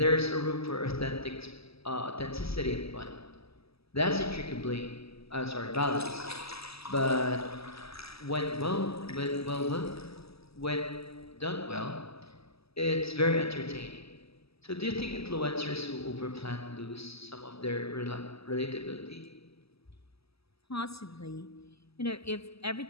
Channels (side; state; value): right; late; 0.77 ms